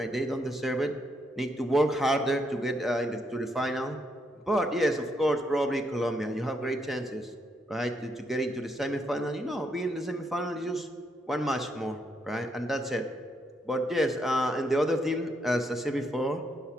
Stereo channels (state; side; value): normal; both; correlation 0.77